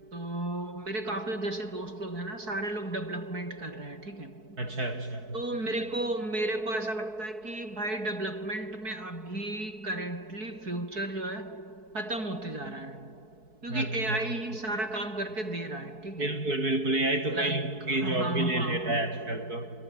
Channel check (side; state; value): left; late; 4.6 ms